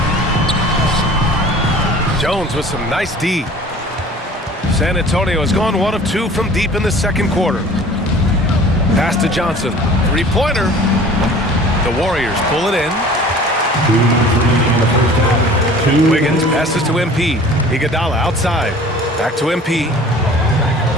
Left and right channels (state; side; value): normal; both; correlation 0.46